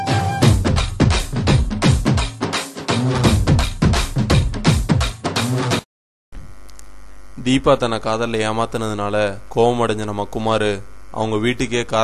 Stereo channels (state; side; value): identical; both; correlation 1.00